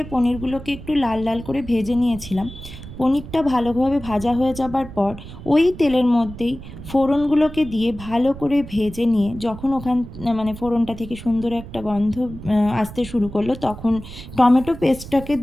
পনিরগুলোকে একটু লাল লাল করে ভেজে নিয়েছিলাম। পনিরটা ভালোভাবে ভাজা হয়ে যাবার পর ওই তেলের মধ্যেই ফোড়নগুলোকে দিয়ে ভালো করে ভেজে নিয়ে যখন ফোড়নটা থেকে সুন্দর একটা গন্ধ আসতে শুরু করলো, তখন টমেটো পেস্টটাকে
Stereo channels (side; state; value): right; noise; rumble, 13 dB below the sound